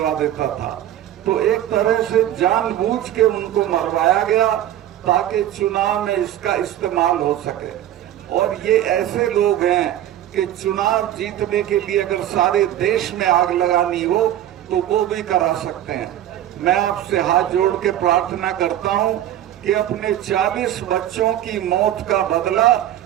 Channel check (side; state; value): left; quieter; 12.2 dB